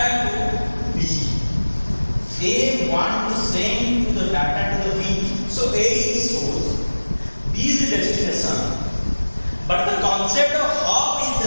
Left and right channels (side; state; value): both; inverted; correlation -1.00